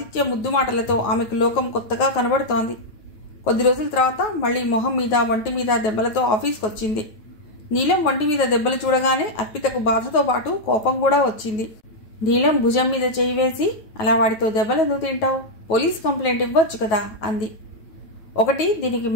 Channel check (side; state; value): right; late; 9.3 ms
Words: ముద్దు మాటలతో ఆమెకు లోకం కొత్తగా కనబడుతోంది. కొద్ది రోజుల తర్వాత మళ్లీ మొహం మీద, వంటి మీద దెబ్బలతో ఆఫీస్కి వచ్చింది. నీలం వంటి మీద దెబ్బలు చూడగానే అర్పితకు బాధతో పాటు కోపం కూడా వచ్చింది. నీలం భుజం మీద చేయి వేసి, అలా వాడితో దెబ్బలు ఎందుకు తింటావు, పోలీస్ కంప్లైంట్ ఇవ్వచ్చు కదా అంది. ఒకటి, దీనికి